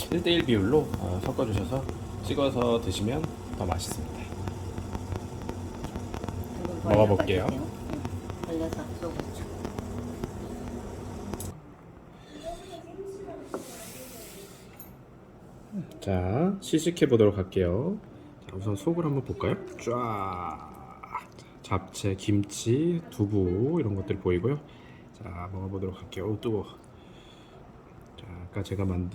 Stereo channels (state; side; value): identical; both; correlation 1.00